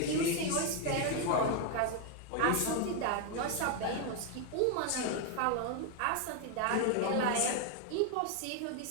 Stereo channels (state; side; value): different; both; correlation 0.01